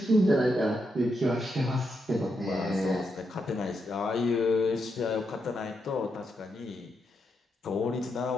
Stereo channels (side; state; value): both; normal; correlation 0.82